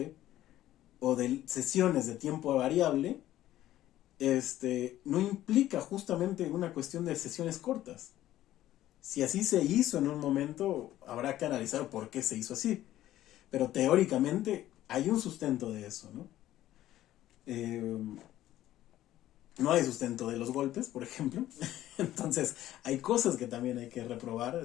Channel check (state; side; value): quieter; right; 13.7 dB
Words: o de sesiones de tiempo variable no implica justamente una cuestión de sesiones cortas. Si así se hizo en un momento, habrá que analizar por qué se hizo así. Pero teóricamente hay un sustento de eso, ¿no? No hay sustento de los golpes, por ejemplo. Entonces, hay cosas que también hay que reprobar